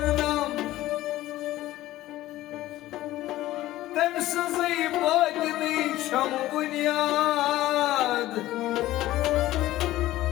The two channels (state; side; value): quieter; right; 15.6 dB